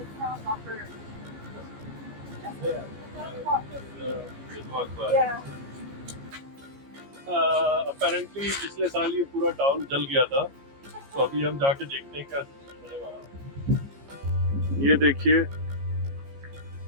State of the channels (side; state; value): left; late; 15 ms